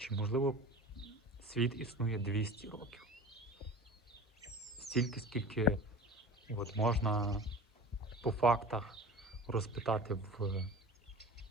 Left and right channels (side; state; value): both; normal; correlation 0.37